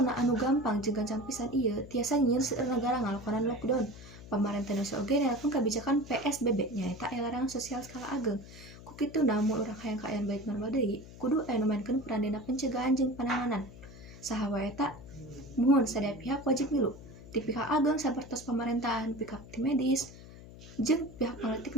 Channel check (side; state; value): left; noise; hum, 17 dB below the sound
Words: anu gampang jeung gancang pisan ieu tiasa nyieun seueur nagara ngalakonan lockdown. Pamarentah Indonesia oge nelpon kebijakan PSBB nyaeta larangan sosial skala ageng. Ku kituna mun urang hayang kaayaan balik normal deui, kudu aya nu maenkeun peran dina pencegahan jeung penanganan. Saha wae eta? Muhun sadaya pihak wajib milu. Ti pihak ageng sapertos pamerintahan, pihak tim medis, jeung pihak